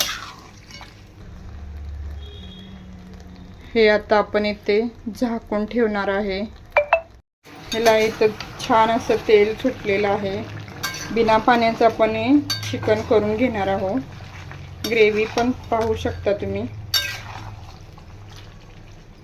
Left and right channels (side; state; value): both; identical; correlation 1.00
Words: हे आता आपण इथे झाकून ठेवणार आहे। ह्याला इथं छान असं तेल सुटलेलं आहे। बिना पाण्याचं आपण हे चिकन करून घेणार आहोत। ग्रेव्ही पण पाहू शकता तुम्ही।